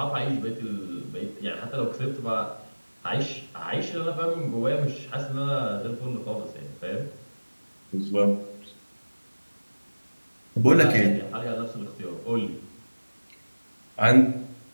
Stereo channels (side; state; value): both; inverted; correlation -1.00